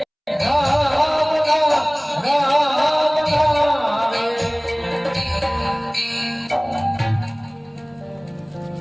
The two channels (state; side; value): identical; both; correlation 1.00